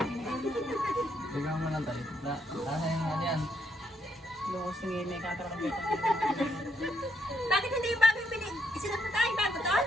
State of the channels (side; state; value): both; normal; correlation 0.73